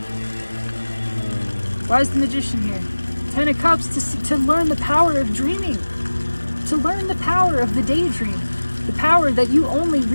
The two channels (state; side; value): inverted; both; correlation -1.00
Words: Why is the Magician here? 10 of Cups to learn the power of dreaming, to learn the power of the daydream. The power that you only